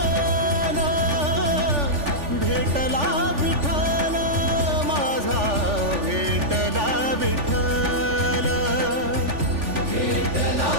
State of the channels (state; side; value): late; left; 3.4 ms